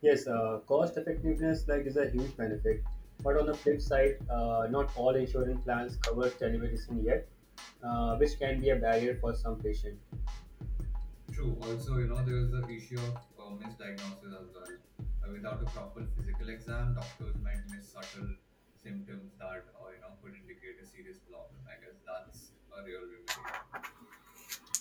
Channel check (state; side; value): identical; both; correlation 1.00